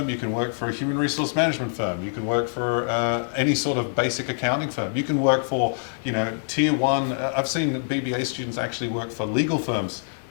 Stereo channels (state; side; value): silent; right; 62 dB below the other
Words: you can work for a human resource management firm, you can work for any sort of basic accounting firm, you can work for, tier one. I've seen BBA students actually work for legal firms.